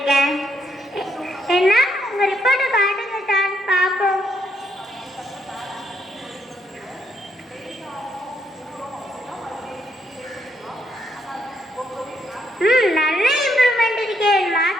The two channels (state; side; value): normal; both; correlation 0.75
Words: என்ன, உங்க ரிப்போர்ட்டை காட்டுங்க சார், பாப்போம். நல்ல இம்ப்ரூவ்மெண்ட் இருக்கே.